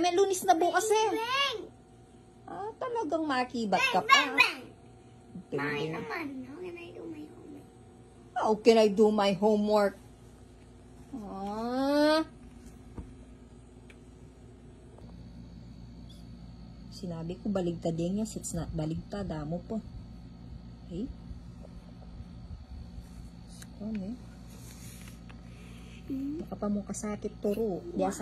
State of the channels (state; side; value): identical; both; correlation 1.00